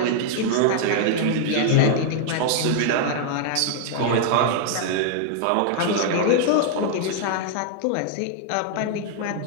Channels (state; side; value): different; both; correlation -0.01